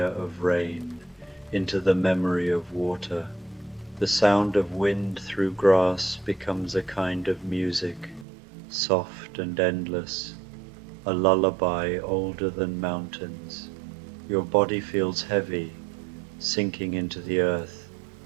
of rain, into the memory of water. The sound of wind through grass becomes a kind of music, soft and endless, a lullaby older than mountains. Your body feels heavy, sinking into the earth,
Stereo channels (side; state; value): left; drops out; at 8.2 s